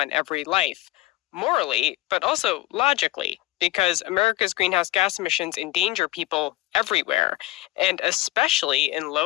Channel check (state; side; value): quieter; right; 17.4 dB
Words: every life, morally, but also logically, because America's greenhouse gas emissions endanger people everywhere, and especially in